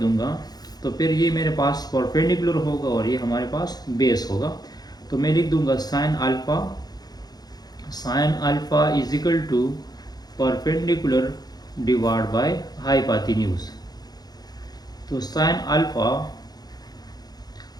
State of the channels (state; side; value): late; right; 0.19 ms